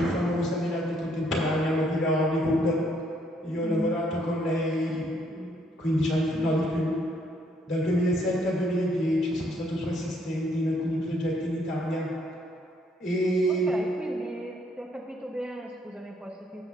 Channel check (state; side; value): normal; both; correlation 0.69